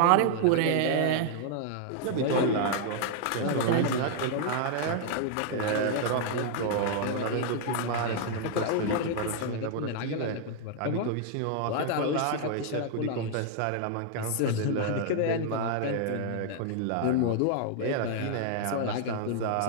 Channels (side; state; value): both; different; correlation 0.00